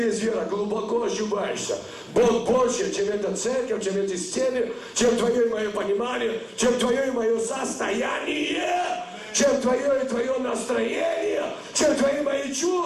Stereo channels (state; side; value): identical; both; correlation 1.00